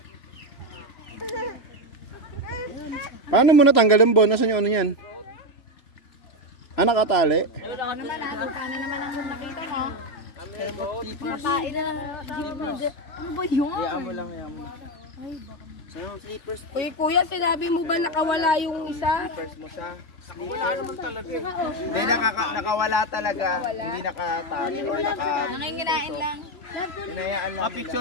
Paano mo natanggal yung bon? Nasaan yung ano yan? Ah, nakatali? Paano naman ang nakita mo? Makain na lang. Ano ba yun? Hayaan mo lang. Uy, kuya, sinabi mo ba nakawala yung isa? First mo siya. Nakawala naman talaga. Hindi, nakawala talaga. Hindi nakatali or Nanginginain lang. Hinayaan lang.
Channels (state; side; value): late; right; 3.4 ms